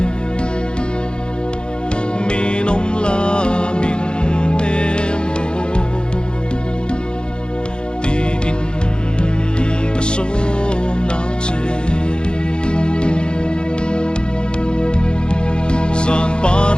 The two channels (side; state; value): right; late; 0.051 ms